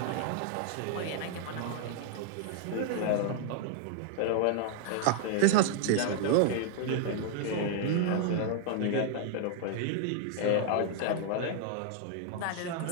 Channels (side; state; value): both; different; correlation 0.00